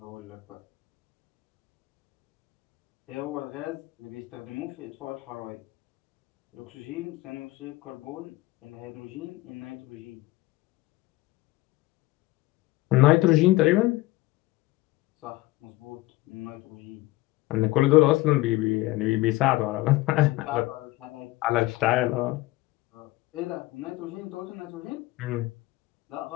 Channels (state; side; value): quieter; right; 18.9 dB